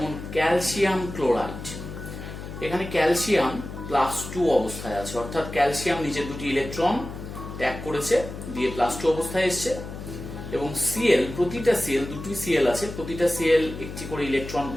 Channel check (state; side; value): noise; left; hum, 10 dB below the sound